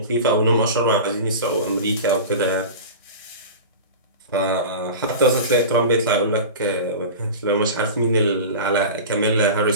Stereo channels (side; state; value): both; inverted; correlation -0.31